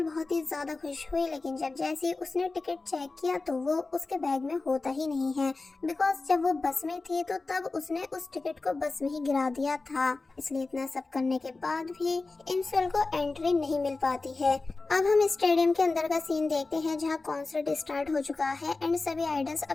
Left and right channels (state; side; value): quieter; right; 3.6 dB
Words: बहुत ही ज्यादा खुश हुई, लेकिन जब जैसे उसने टिकट चेक किया तो वो उसके बैग में होता ही नहीं है, बिकॉज जब वो बस में थी तो तब उसने उस टिकट को बस में ही गिरा दिया था। इसलिए इतना सब करने के बाद भी इंसोल को एंट्री नहीं मिल पाती है। अब हम स्टेडियम के अंदर का सीन देखते हैं, जहां कॉन्सर्ट स्टार्ट हो चुका है एंड सभी आइडल्स